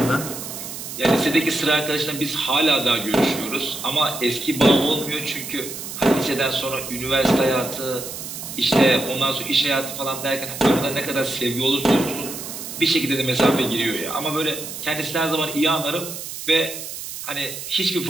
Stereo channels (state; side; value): noise; right; hiss, 9 dB below the sound